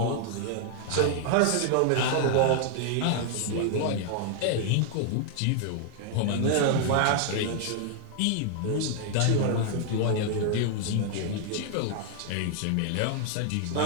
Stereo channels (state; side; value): different; both; correlation 0.00